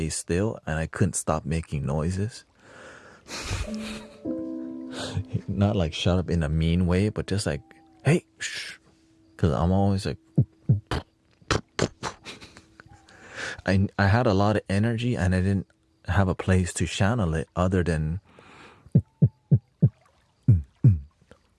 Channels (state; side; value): identical; both; correlation 1.00